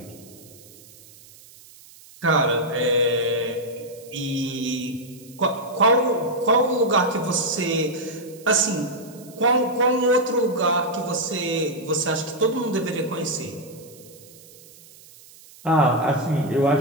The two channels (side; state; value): right; noise; hiss, 22 dB below the sound